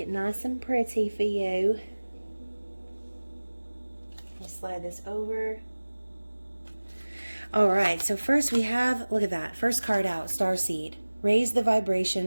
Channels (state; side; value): inverted; both; correlation -1.00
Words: nice and pretty for you. I'll slide this over. All right, so first we have, look at that, first card out, Starseed. Raise the